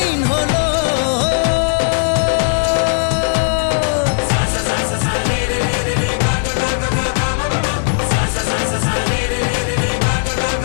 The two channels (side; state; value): right; silent; digital silence